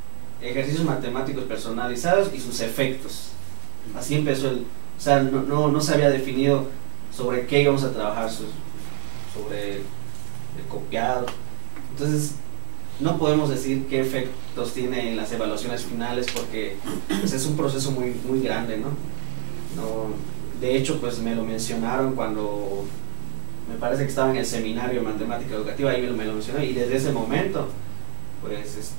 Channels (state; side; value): silent; left; digital silence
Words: ejercicios matemáticos personalizados y sus efectos. Así empezó o sea, no se había definido sobre qué íbamos a trabajar, sobre el copiado. Entonces, no podemos decir qué efectos tiene en las evaluaciones finales porque pues, es un proceso muy, muy grande, ¿no? De hecho, pues me lo mencionaron cuando me parece que estaba en el seminario de matemática educativa, ahí me lo mencionó, y desde ese momento, pues